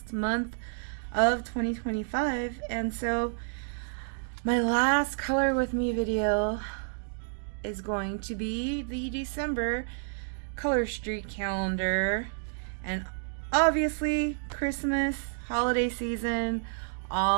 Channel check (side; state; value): left; silent; digital silence